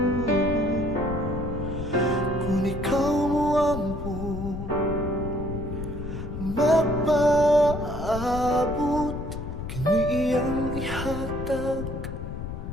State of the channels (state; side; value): noise; left; rumble, 7 dB below the sound